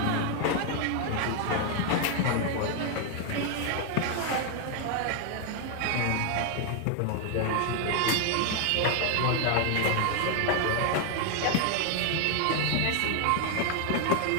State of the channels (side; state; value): both; different; correlation 0.00